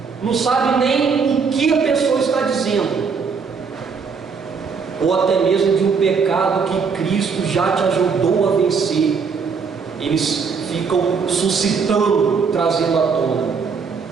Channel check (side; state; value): left; quieter; 5.5 dB